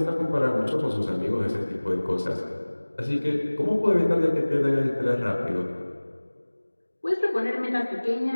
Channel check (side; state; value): both; inverted; correlation -1.00